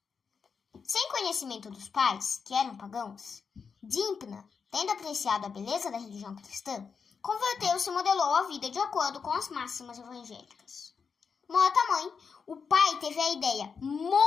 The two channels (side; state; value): right; quieter; 5.8 dB